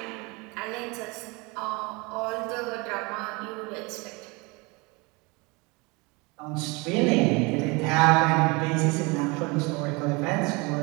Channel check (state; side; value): quieter; left; 27.0 dB